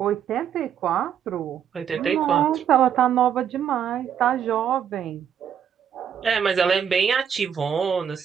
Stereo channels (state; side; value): quieter; left; 8.5 dB